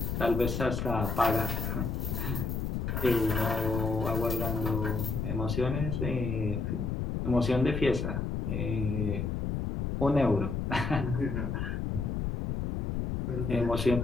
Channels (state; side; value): noise; left; rumble, 2 dB below the sound